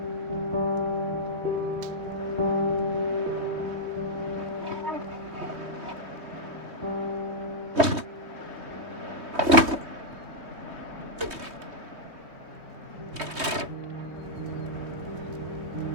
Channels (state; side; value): late; left; 3.2 ms